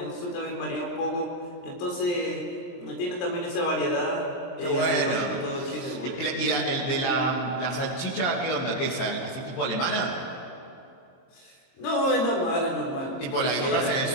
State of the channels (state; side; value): late; right; 23 ms